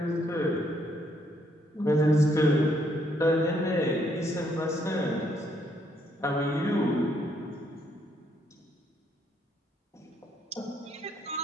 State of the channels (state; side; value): normal; both; correlation 0.71